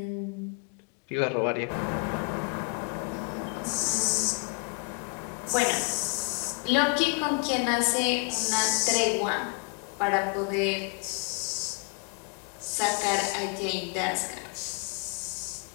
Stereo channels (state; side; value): quieter; right; 34.8 dB